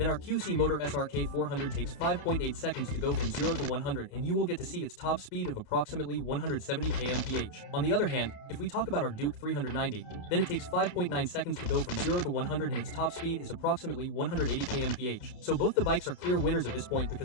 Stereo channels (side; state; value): right; late; 30 ms